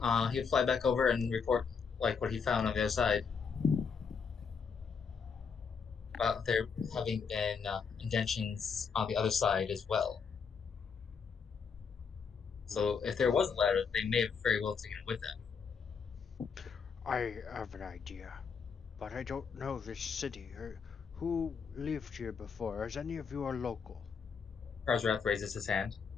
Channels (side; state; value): right; quieter; 6.0 dB